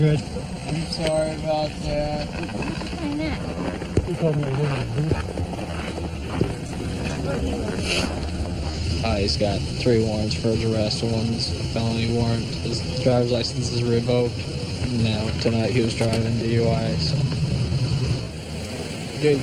I'm sorry about that. Why not? You told me I wasn't. He's got 3 warrants for his arrest. One's felony warrant. His driver's license is revoked. Now, tonight he was driving DUI, so good to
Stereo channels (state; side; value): identical; both; correlation 1.00